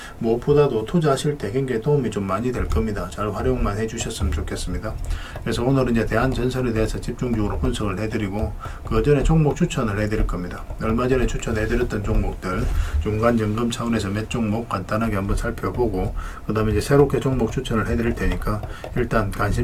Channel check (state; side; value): identical; both; correlation 1.00